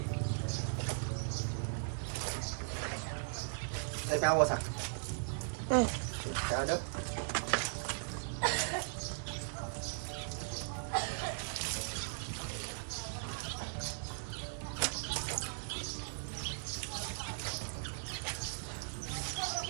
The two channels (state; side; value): silent; left; digital silence